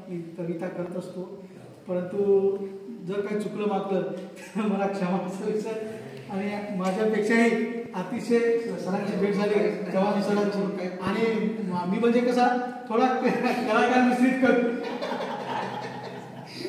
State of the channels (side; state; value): both; identical; correlation 1.00